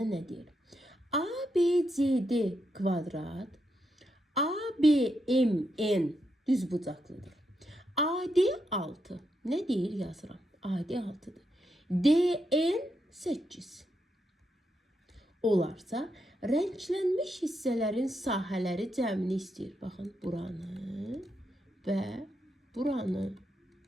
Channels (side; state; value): both; normal; correlation 0.82